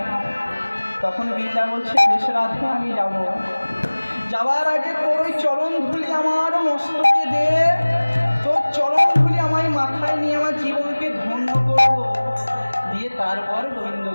তখন বৃন্দা বলছে, বেশ রাধে আমি যাব। যাওয়ার আগে তোর ওই চরণ ধুলি আমার মস্তকে দে, তোর চরণ ধুলি আমায় মাথায় নিয়ে আমার জীবনকে ধন্য করব, দিয়ে তারপর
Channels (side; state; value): both; inverted; correlation -1.00